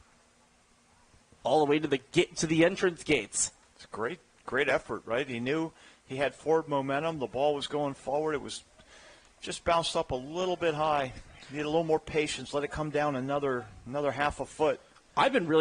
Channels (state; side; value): identical; both; correlation 1.00